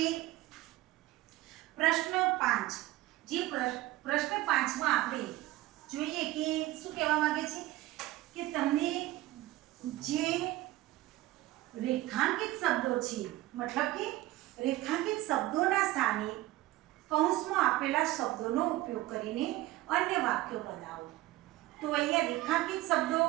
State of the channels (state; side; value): quieter; left; 17.1 dB